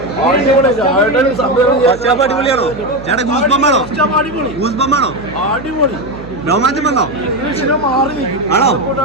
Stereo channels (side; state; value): right; noise; hum, 15 dB below the sound